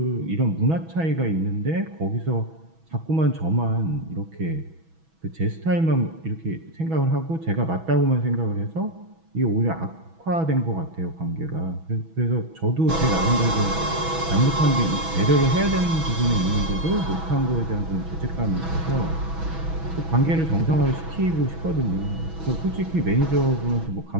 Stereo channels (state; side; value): late; left; 6.1 ms